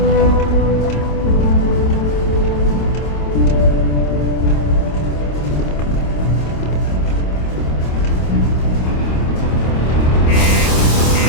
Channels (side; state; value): right; late; 26 ms